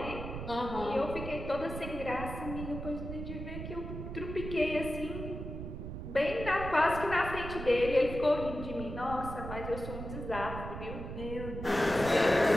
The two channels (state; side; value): noise; right; rumble, 7 dB below the sound